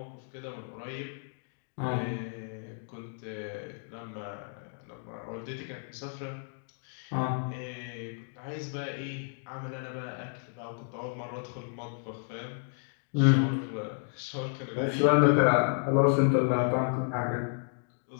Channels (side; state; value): right; silent; 57 dB below the other